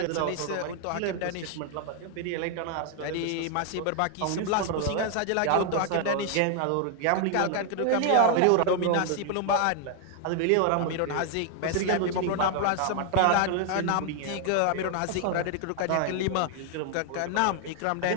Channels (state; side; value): different; both; correlation 0.00